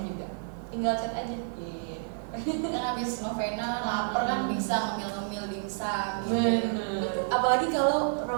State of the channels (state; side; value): silent; left; 58 dB below the other